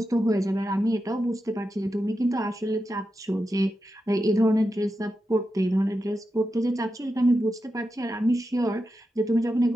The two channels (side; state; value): both; normal; correlation 0.89